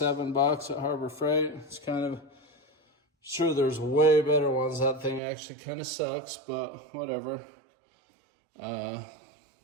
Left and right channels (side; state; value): left; drops out; at 5.2 s